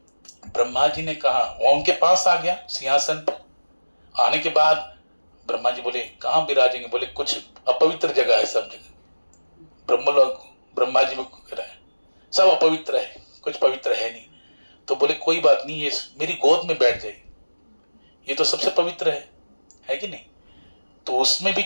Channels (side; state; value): both; inverted; correlation -1.00